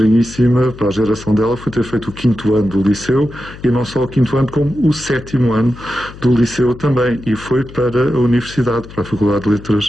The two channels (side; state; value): left; noise; hum, 16 dB below the sound